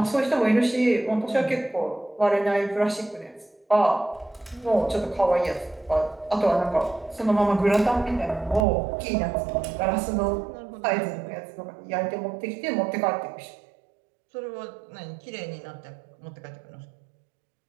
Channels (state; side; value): drops out; left; at 8.7 s